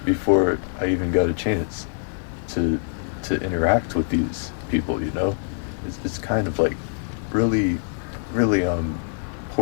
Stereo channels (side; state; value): right; silent; 58 dB below the other